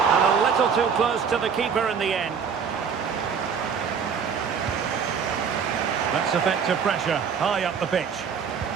And a little too close to the keeper in the end. That's effective pressure high up the pitch.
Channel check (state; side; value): quieter; left; 6.6 dB